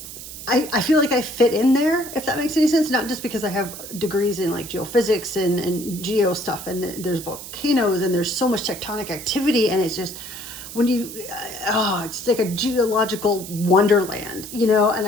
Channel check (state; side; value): noise; right; hiss, 12 dB below the sound